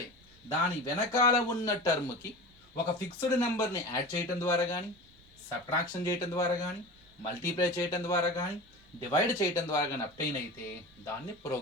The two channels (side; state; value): right; noise; rumble, 28 dB below the sound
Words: దాని వెనకాల ఉన్న టర్మ్కి ఒక ఫిక్స్డ్ నెంబర్ని యాడ్ చేయటం ద్వారా కానీ, సబ్ట్రాక్షన్ చేయటం ద్వారా కానీ, మల్టిప్లై చేయటం ద్వారా కానీ, డివైడ్ చేయటం ద్వారా కానీ అప్టైన్ అయితే దాన్ని